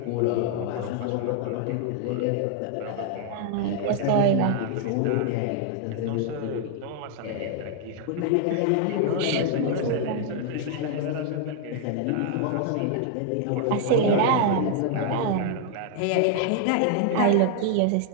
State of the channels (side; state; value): both; different; correlation 0.00